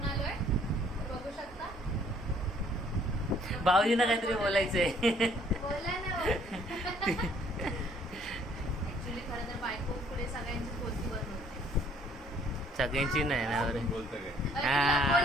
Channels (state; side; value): normal; both; correlation 0.61